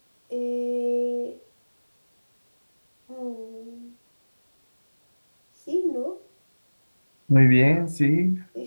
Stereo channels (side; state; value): both; inverted; correlation -1.00